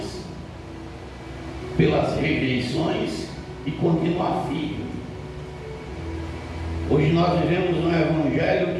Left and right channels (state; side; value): identical; both; correlation 1.00